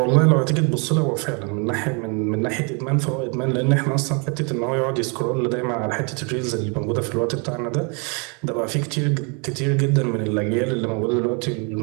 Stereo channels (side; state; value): left; quieter; 34.3 dB